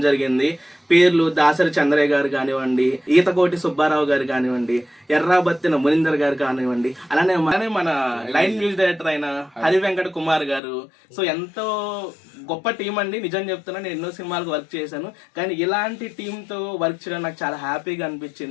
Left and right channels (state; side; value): drops out; right; at 10.6 s